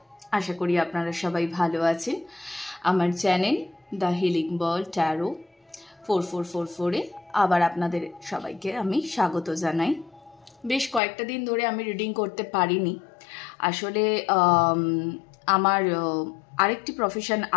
আশা করি আপনারা সবাই ভালো আছেন। আমার channel the healing ball tarot 4444-এ আবার আপনাদের সবাইকে আমি স্বাগত জানাই। বেশ কয়েকটা দিন ধরে আমি রিডিং করতে পারিনি। আসলে আমার আরেকটি প্রফেশন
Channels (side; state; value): right; drops out; at 11.0 s